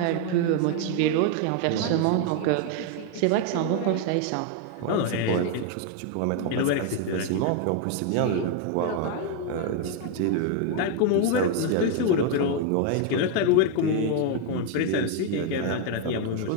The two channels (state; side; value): different; both; correlation 0.01